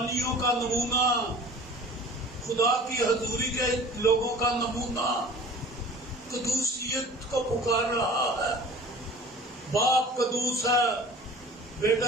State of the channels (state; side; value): normal; both; correlation 0.43